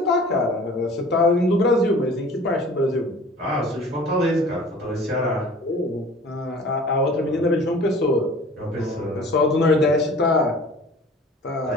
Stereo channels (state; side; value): normal; both; correlation 0.46